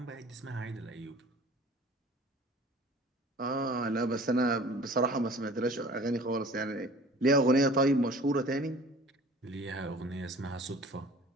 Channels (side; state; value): both; normal; correlation 0.46